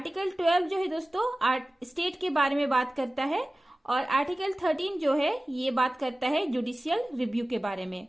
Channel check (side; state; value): both; normal; correlation 0.97